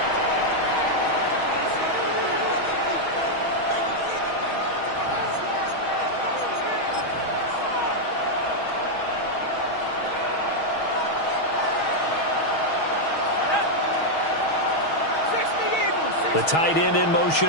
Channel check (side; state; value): right; late; 6.3 ms